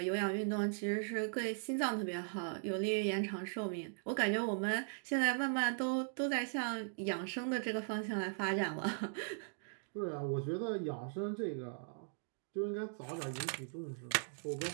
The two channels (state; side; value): silent; left; digital silence